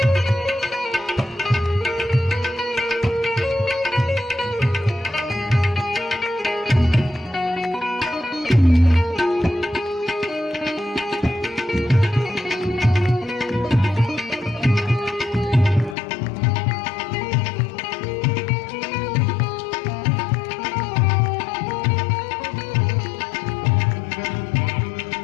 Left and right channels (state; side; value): drops out; right; at 16.0 s